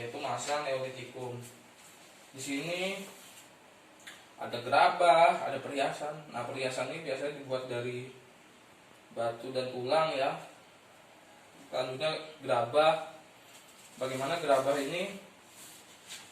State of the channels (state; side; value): identical; both; correlation 1.00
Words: masa Neolitikum. Di sini ada gerabah, ada perhiasan. Nah, perhiasan ini biasanya dibuat dari batu dan tulang ya. Selanjutnya gerabah. Bagaimana gerabah ini